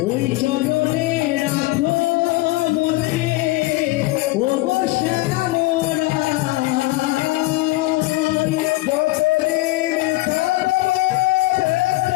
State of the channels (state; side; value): quieter; right; 19.5 dB